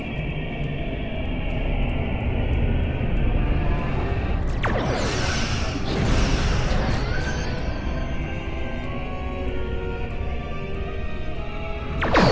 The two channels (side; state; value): both; identical; correlation 1.00